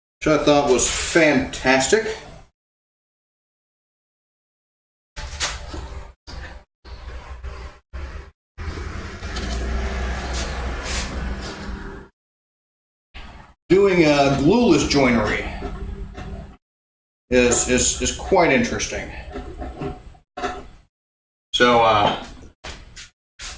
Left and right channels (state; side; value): identical; both; correlation 1.00